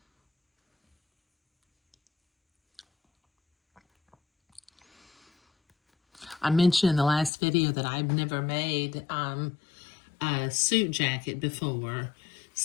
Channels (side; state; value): right; drops out; at 7.3 s